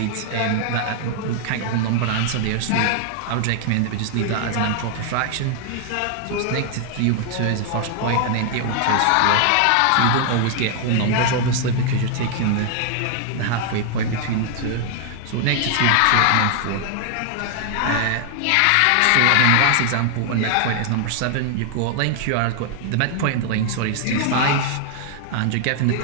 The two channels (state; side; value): different; both; correlation 0.00